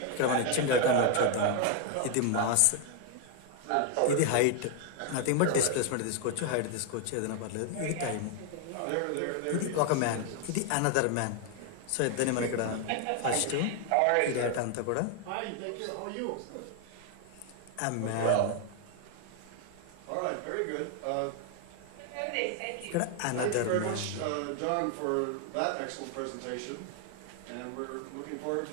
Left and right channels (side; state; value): both; different; correlation 0.01